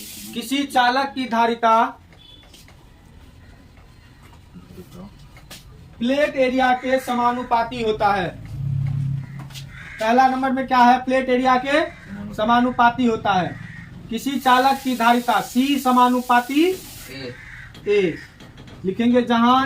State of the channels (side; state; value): both; identical; correlation 1.00